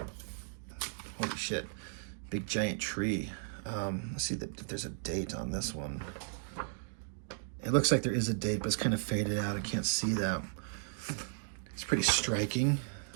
Holy shit. Big giant tree. Let's see if there's a date on this one. It looks like there is a date, but it's kind of faded out. I can't see that. It's pretty striking.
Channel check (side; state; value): left; silent; digital silence